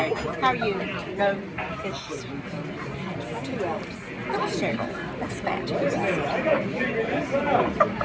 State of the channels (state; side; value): identical; both; correlation 1.00